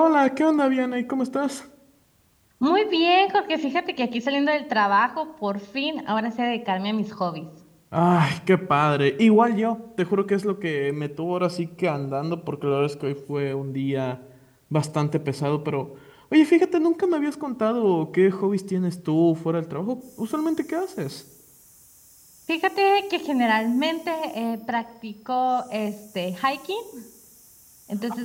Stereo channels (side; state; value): both; identical; correlation 1.00